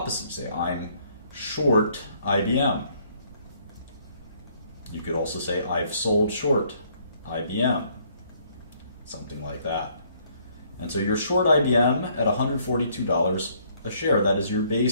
Say, I'm short IBM. You could also say, I've sold short IBM. Something like that. And so you're short IBM at $142 a share. That is your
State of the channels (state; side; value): inverted; both; correlation -0.66